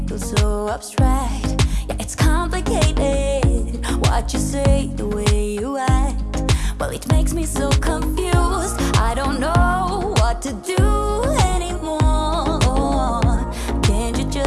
feels so abstract. Yeah, it's complicated. What you say, the way you act, well, it makes me so confused. I don't know what to do anymore.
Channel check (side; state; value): both; identical; correlation 1.00